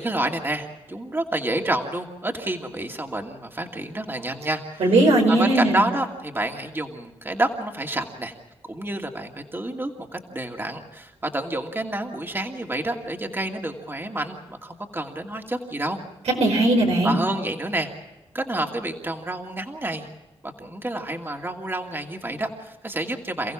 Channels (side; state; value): both; normal; correlation 0.70